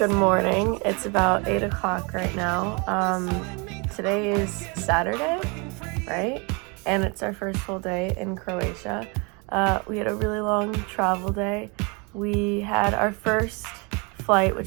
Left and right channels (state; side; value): quieter; left; 30.9 dB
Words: morning. It's about 8 o'clock right now. Today is Saturday, right? And it's our first full day in Croatia. We had a really long travel day. We had our first flight,